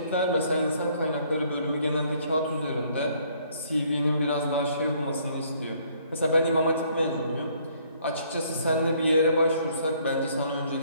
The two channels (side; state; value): both; inverted; correlation -0.64